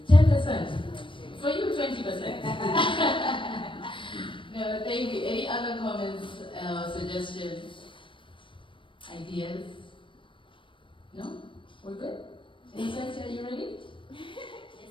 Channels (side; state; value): right; late; 0.25 ms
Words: 10%. For you, 20%. No, thank you. Any other comments, suggestions, ideas? No? We're good? Innocent, are you ready?